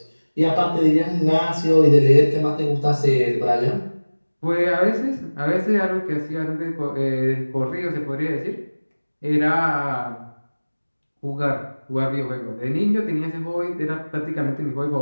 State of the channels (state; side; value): inverted; both; correlation -1.00